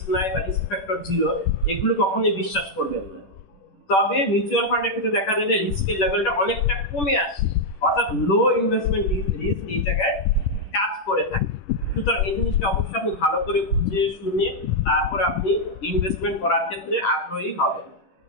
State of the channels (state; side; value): late; right; 10 ms